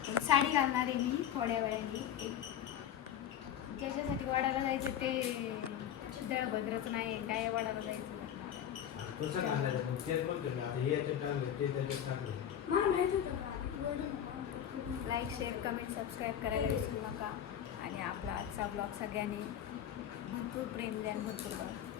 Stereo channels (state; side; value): quieter; right; 9.9 dB